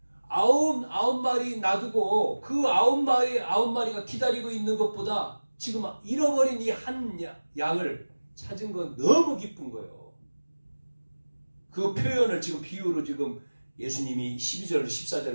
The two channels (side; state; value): both; inverted; correlation -1.00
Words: 아홉 마리 놔두고 그 아홉 마리가 기다리고 있는 것보다 지금 잃어버린 이 한 양을 찾은 건 너무 기쁜 거예요. 그 표현을 지금 비유로 지금 예수님이 12절,